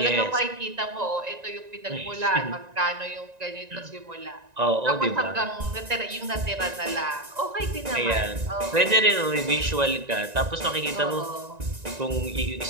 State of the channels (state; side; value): late; left; 1.9 ms